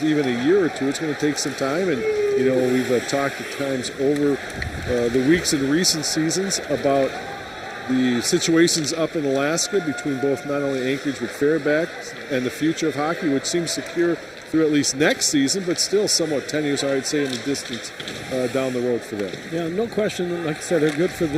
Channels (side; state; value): both; identical; correlation 1.00